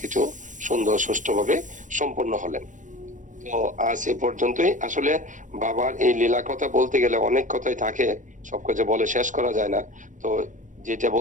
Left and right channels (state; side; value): late; left; 0.37 ms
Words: সুন্দর সুষ্ঠুভাবে সম্পন্ন হলেন। তো আজ এ পর্যন্তই। আসলে বাবার এই লীলা কথা বলতে গেলে অনেক কথাই থাকে, সবকিছু বলে শেষ করা যায় না। তো যেটা